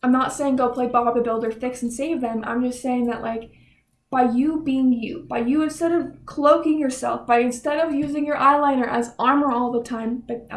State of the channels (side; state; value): both; identical; correlation 1.00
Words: I'm not saying go play Bob the Builder, fix and save them. I'm just saying that like, by you being you, by you instead of cloaking yourself, by instead of using your eyeliner as armor all the time, but